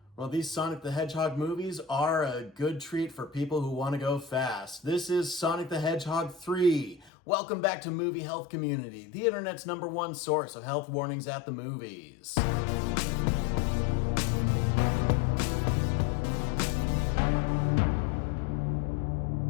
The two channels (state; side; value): drops out; right; at 7.1 s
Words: Well, these Sonic the Hedgehog movies are a good treat for people who want to go fast. This is Sonic the Hedgehog 3. Welcome back to Movie Health Community, the internet's #1 source of health warnings at the movies.